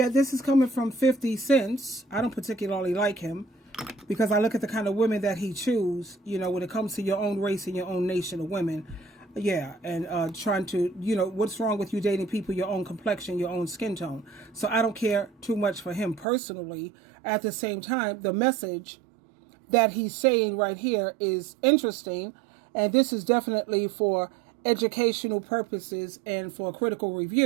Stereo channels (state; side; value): drops out; left; at 16.2 s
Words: this is coming from 50 Cents. I don't particularly like him because I look at the kind of women that he chooses, when it comes to your own race and your own nation of women. Yeah, and trying to, what's wrong with you dating people your own complexion, your own skin tone? So I don't care too much for him personally. At the same time, the message that he's saying right here is interesting, and this is definitely for educational purposes and for critical